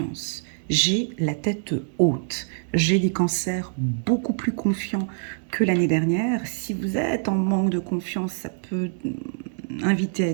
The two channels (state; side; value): silent; left; digital silence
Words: J'ai la tête haute. J'ai des cancers beaucoup plus confiants que l'année dernière. Si vous êtes en manque de confiance, ça peut inviter à